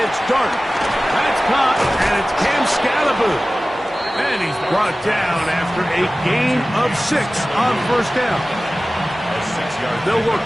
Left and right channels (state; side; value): normal; both; correlation 0.97